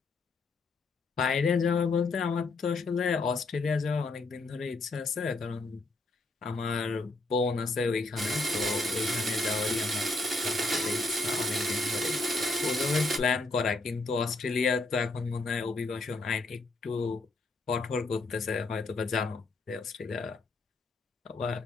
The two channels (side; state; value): right; quieter; 3.2 dB